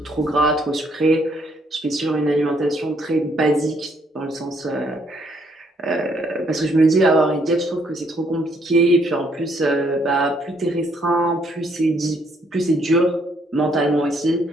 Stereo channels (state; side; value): normal; both; correlation 0.69